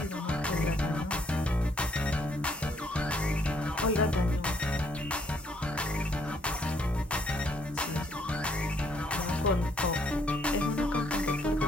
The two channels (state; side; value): normal; both; correlation 0.68